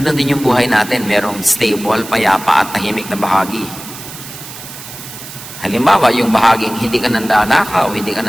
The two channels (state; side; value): noise; right; hiss, 13 dB below the sound